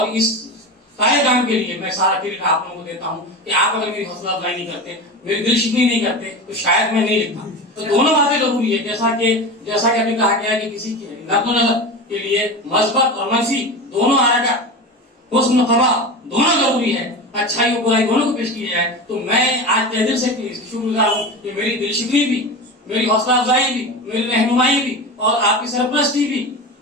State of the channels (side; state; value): both; normal; correlation 0.26